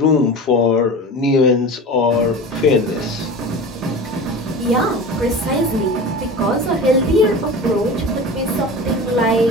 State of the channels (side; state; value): both; normal; correlation 0.32